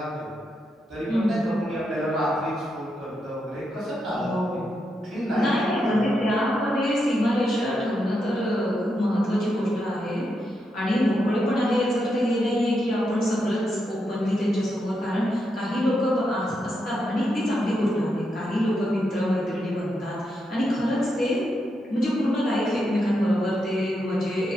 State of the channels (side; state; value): both; normal; correlation 0.83